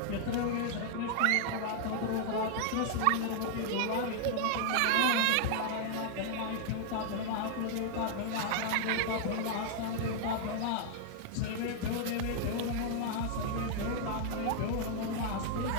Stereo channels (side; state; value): both; different; correlation 0.00